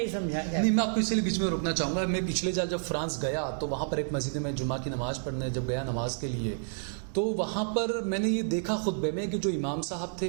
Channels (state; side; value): silent; left; digital silence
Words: سمجھا جاتا. نہیں، میں آپ کو اس لیے بیچ میں روکنا چاہوں گا. میں پچھلے سال جب فرانس گیا تو وہاں پر ایک مسجد میں جمعہ کی نماز پڑھنے جب گیا نماز کے لیے، تو وہاں پر میں نے یہ دیکھا خطبے میں کہ جو امام صاحب